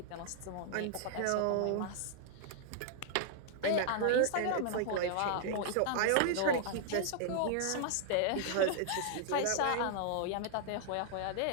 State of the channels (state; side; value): different; both; correlation -0.01